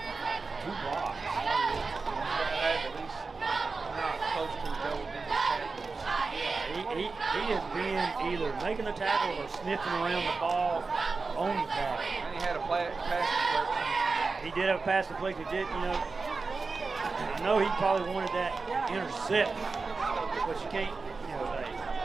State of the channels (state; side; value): quieter; left; 4.2 dB